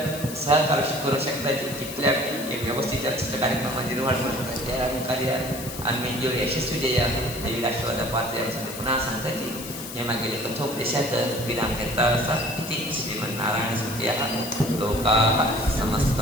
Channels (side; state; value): left; noise; hiss, 11 dB below the sound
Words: सहकार्य करू शकता तिथल्या एक व्यवस्थित कार्यक्रमामध्ये निर्माण करू शकता त्या कार्य आम्ही जेवढे यशस्वी देया देवी राष्ट्रवाद पात्र पुन्हा सांगता की हे मागील कथोपदेशात विराम घेता असा इति श्रीमन्नारायण सुखिया लोकाः